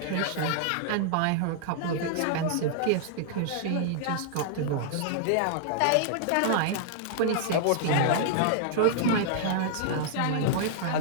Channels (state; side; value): different; both; correlation -0.01